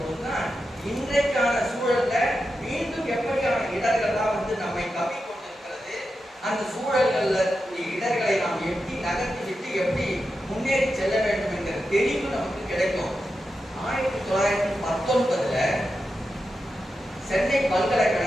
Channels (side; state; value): both; normal; correlation 0.89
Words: இன்றைக்கான சூழல்ல மீண்டும் எப்படியான இடர்கள்லாம் நம்மை கவி கொண்டிருக்கிறது, அந்த சூழல்கள்ல இடர்களை நாம் எப்படி நகர்த்தி விட்டு எப்படி முன்னேறி செல்ல வேண்டும் என்கிற தெளிவு நமக்கு கிடைக்கும். 1919 சென்னை